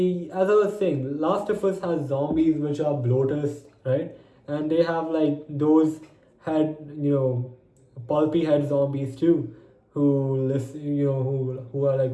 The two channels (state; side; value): identical; both; correlation 1.00